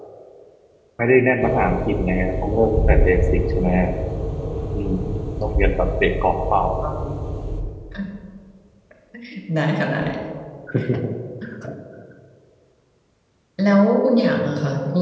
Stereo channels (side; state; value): both; identical; correlation 1.00